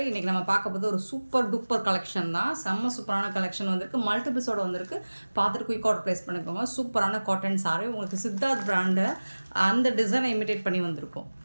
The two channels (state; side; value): inverted; both; correlation -1.00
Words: இன்றைக்கி நம்ம பார்க்க போது ஒரு சூப்பர் டூப்பர் கலெக்ஷன் தான். செம்ம சூப்பரான கலெக்ஷன் வந்திருக்கு, மல்டிபிள்ஸோடு வந்திருக்கு. பார்த்துட்டு குயிக் ஆர்டர் ப்ளேஸ் பண்ணிக்கோங்க. சூப்பரான காட்டன் சாரி, உங்களுக்கு சித்தார்த் பிராண்டு அந்த டிசைனை இமிட்டேட் பண்ணி வந்திருக்கும்.